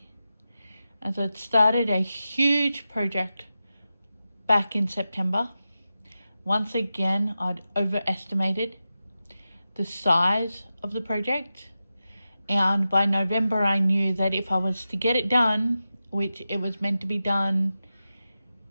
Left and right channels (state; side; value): inverted; both; correlation -0.92